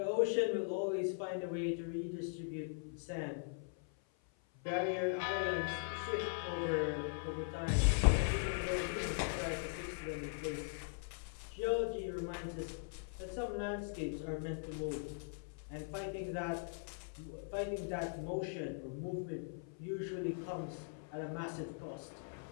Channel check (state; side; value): silent; right; 51 dB below the other